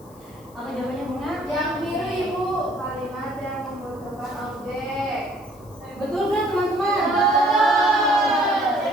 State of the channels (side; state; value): left; noise; hiss, 27 dB below the sound